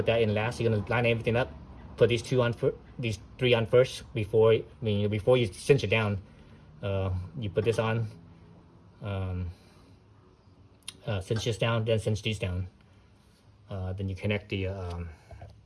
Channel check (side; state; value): both; identical; correlation 1.00